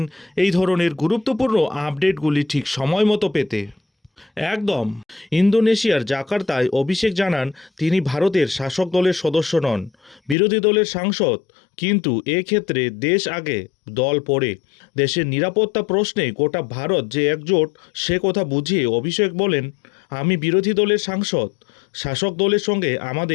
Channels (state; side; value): drops out; right; at 10.4 s